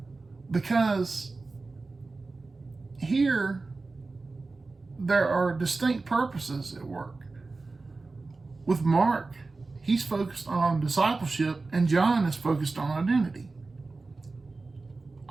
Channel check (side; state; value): left; quieter; 3.7 dB